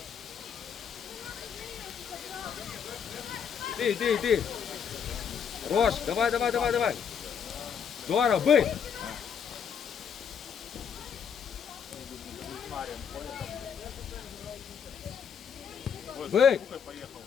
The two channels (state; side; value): quieter; right; 7.4 dB